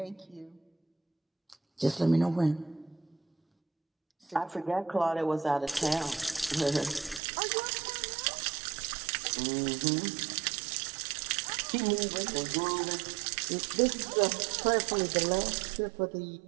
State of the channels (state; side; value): drops out; left; at 7.2 s